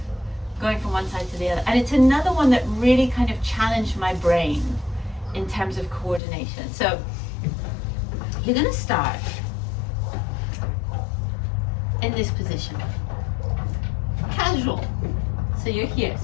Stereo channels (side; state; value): right; drops out; at 6.2 s